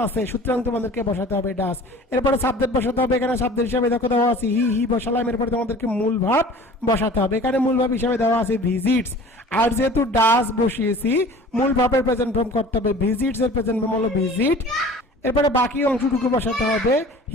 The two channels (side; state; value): both; normal; correlation 0.45